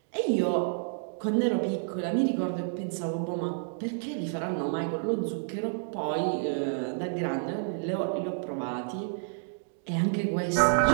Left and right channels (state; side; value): silent; left; digital silence